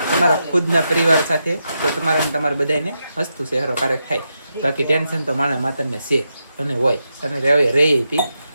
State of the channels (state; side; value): inverted; both; correlation -0.85